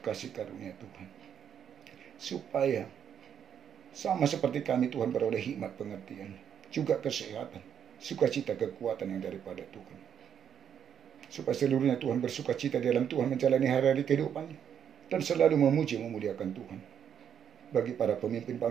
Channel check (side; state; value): left; quieter; 8.5 dB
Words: kasih karunia Tuhan, supaya sama seperti kami, Tuhan beroleh hikmat pengertian, juga kesehatan, sukacita, kekuatan yang daripada Tuhan, supaya seluruhnya Tuhan bersukacita di dalam Tuhan, menjalani hari-hari kehidupannya, dan selalu memuji memuliakan Tuhan. Bagi para pemimpin